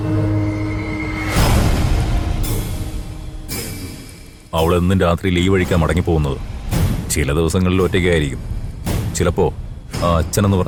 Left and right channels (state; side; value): identical; both; correlation 1.00